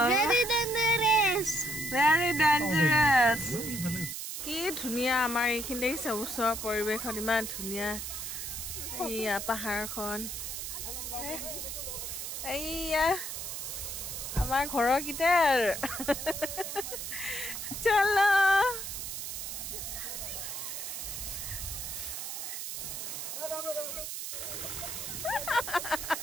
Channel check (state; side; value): noise; right; hiss, 6 dB below the sound